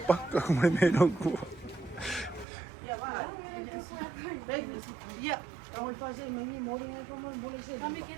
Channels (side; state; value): left; drops out; at 2.5 s